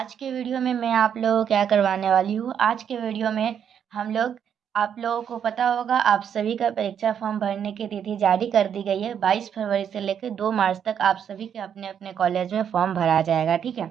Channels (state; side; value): quieter; left; 8.4 dB